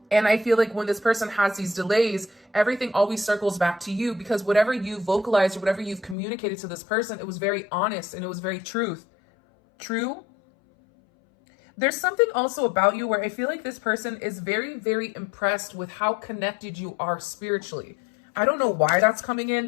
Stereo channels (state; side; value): drops out; right; at 6.2 s